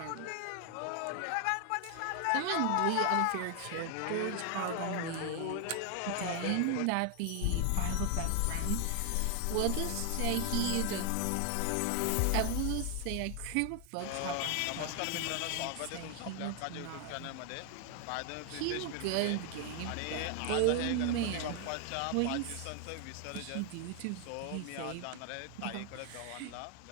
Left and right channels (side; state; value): both; different; correlation 0.00